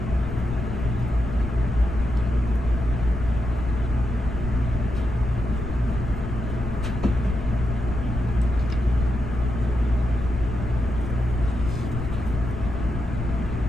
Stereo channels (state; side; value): noise; left; rumble, 6 dB below the sound